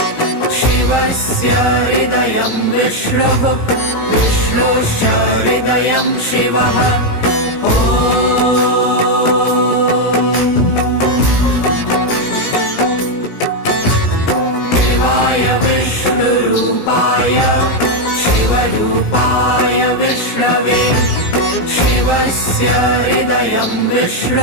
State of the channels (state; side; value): late; right; 17 ms